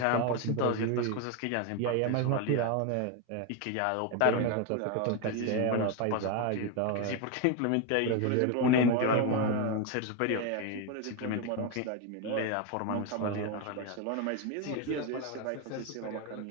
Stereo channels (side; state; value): both; different; correlation 0.02